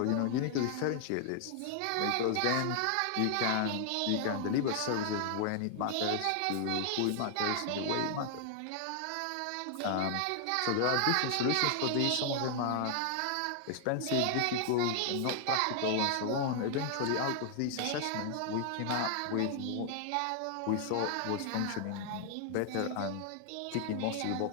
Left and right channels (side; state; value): both; different; correlation 0.00